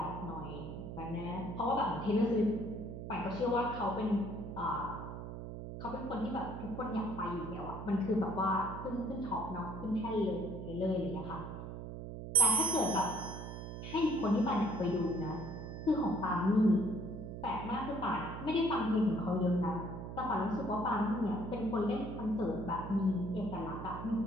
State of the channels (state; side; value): noise; right; hum, 8 dB below the sound